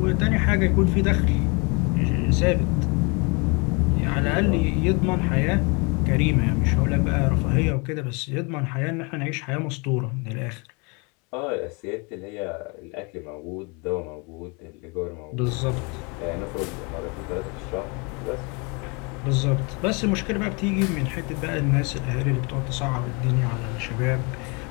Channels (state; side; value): quieter; right; 31.1 dB